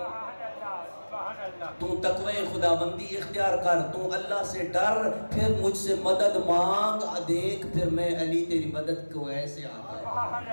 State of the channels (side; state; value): both; inverted; correlation -1.00